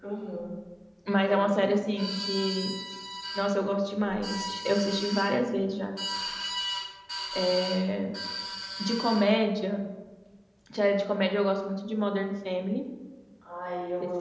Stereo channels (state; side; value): identical; both; correlation 1.00